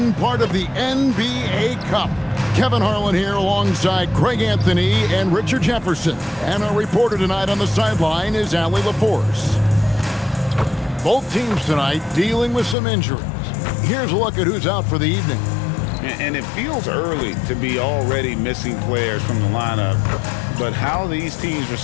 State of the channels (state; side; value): drops out; right; at 12.8 s